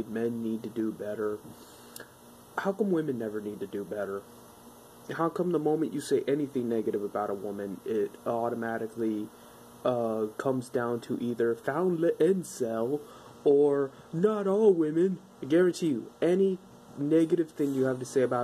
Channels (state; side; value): identical; both; correlation 1.00